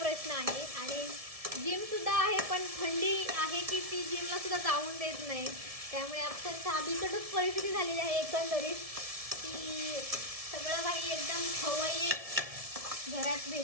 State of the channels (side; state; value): left; late; 1.7 ms